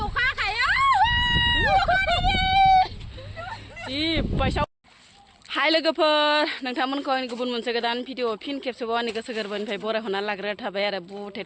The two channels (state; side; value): identical; both; correlation 1.00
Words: जि बायसाव हाय लोगोफोर नोंथांमोनखौ गुबुन मोनसे गोदान भिडिअ फिन खेबसेबाव आंनि गोसो गोरबोनिफ्राय बरायहरना लाग्रा थाबाय आरो